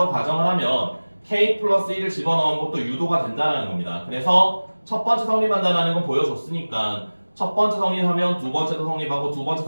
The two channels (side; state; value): both; inverted; correlation -1.00